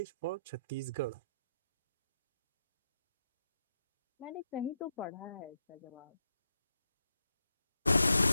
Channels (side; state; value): both; inverted; correlation -0.83